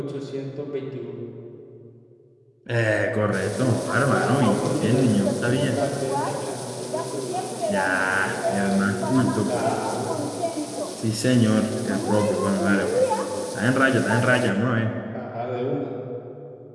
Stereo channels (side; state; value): both; identical; correlation 1.00